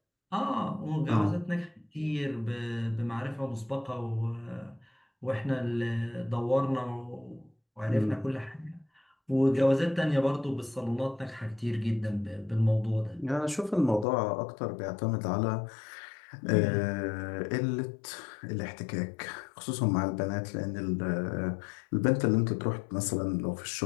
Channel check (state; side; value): drops out; right; at 14.1 s